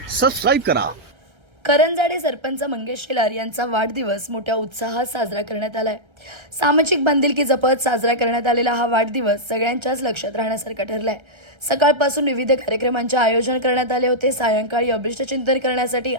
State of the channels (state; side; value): late; left; 1.3 ms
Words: सबस्क्राईब करा. करंजाडे सरपंच मंगेश शेलार यांचा वाढदिवस मोठ्या उत्साहात साजरा करण्यात आलाय. सामाजिक बांधिलकी जपत साजरा करण्यात आलेला हा वाढदिवस सगळ्यांच्याच लक्षात राहण्यासारखा ठरलाय. सकाळपासून विविध कार्यक्रमांचे आयोजन करण्यात आले होते. सायंकाळी अभिष्ट चिंतन करण्यासाठी